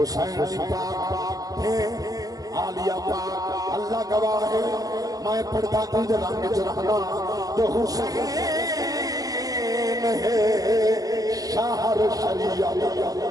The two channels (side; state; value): left; late; 0.17 ms